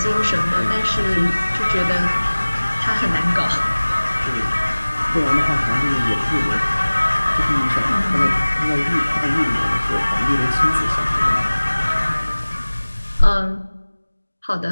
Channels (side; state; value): both; inverted; correlation -1.00